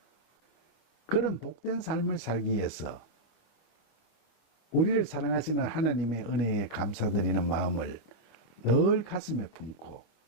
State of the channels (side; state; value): right; late; 25 ms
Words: 그런 복된 삶을 살기 위해서 우리를 사랑하시는 하나님의 은혜에 감사드리는 마음을 늘 가슴에 품고